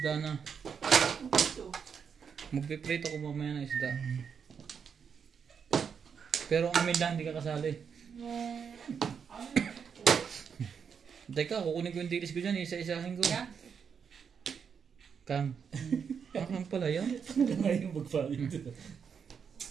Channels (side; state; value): left; quieter; 6.8 dB